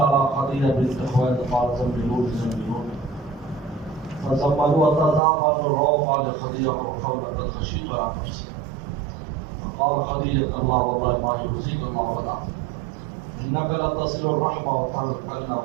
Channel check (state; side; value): drops out; left; at 5.2 s